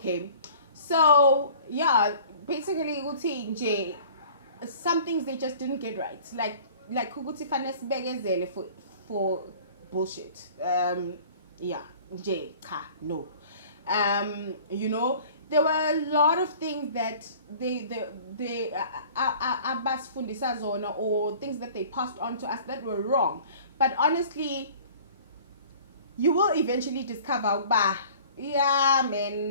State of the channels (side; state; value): both; inverted; correlation -0.47